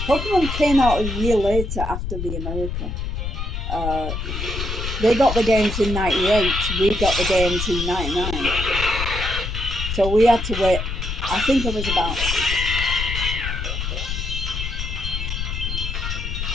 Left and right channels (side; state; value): left; noise; rumble, 4 dB below the sound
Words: Pokemon came out a year later after the America. They got the games in 98. We got the games in 99. So we had to wait. I think it was about...